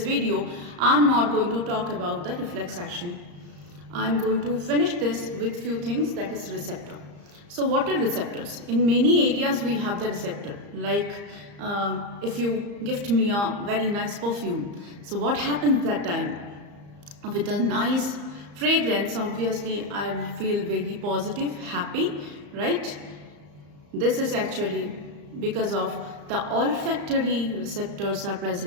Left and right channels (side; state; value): left; late; 34 ms